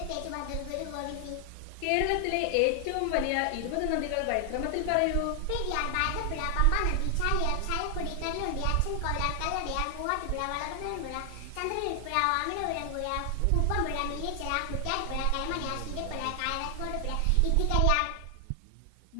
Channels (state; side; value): different; both; correlation 0.00